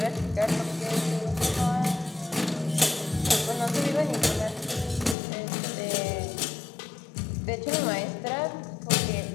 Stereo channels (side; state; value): right; drops out; at 5.2 s